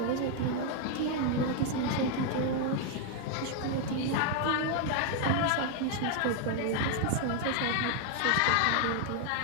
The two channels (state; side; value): different; both; correlation 0.00